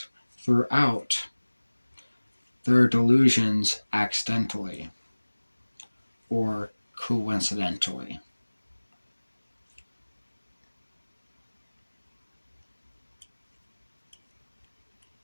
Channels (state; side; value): inverted; both; correlation -1.00